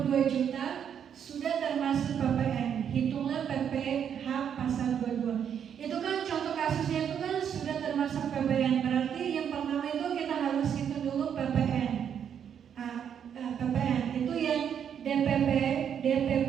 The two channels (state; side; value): quieter; left; 8.3 dB